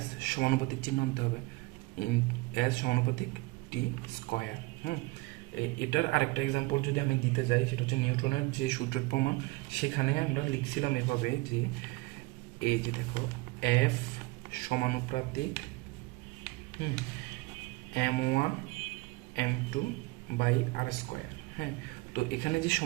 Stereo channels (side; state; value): left; quieter; 22.5 dB